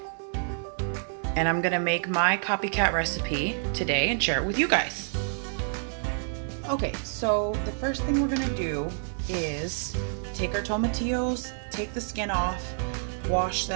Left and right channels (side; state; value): left; silent; 59 dB below the other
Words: And I'm gonna make my copycat recipe today and share it with you guys. Okay, so the first thing we're gonna do is take our tomatillos, take the skin off, wash